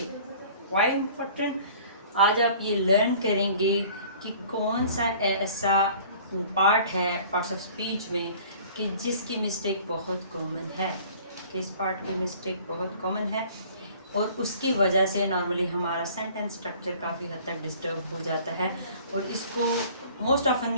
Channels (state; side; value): inverted; both; correlation -0.50